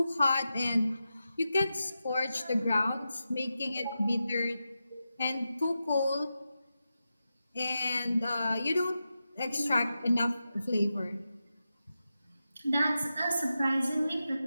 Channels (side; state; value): both; inverted; correlation -0.90